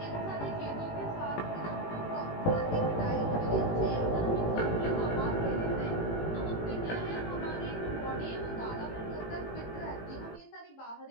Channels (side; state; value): right; late; 18 ms